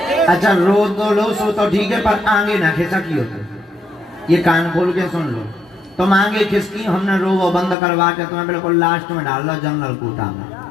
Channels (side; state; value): right; drops out; at 7.8 s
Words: अच्छा रो दो लो सो तो ठीक है, पर आगे ना खिसा की होते, ये कान खोल के सुन लो। तुम आगे खिसकी, हमने रो वो बंद करवा के तुम्हें बिल्कुल लास्ट में डाल लो जनरल कोटा में।